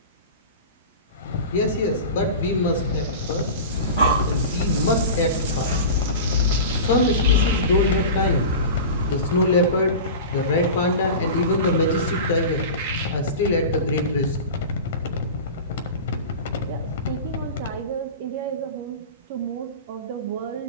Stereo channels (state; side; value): inverted; both; correlation -0.31